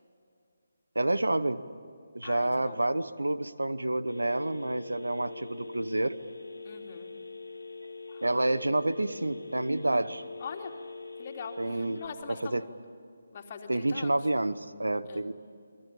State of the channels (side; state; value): both; inverted; correlation -0.97